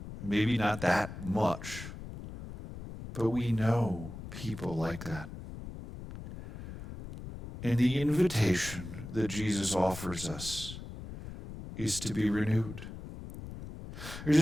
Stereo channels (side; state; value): left; noise; rumble, 11 dB below the sound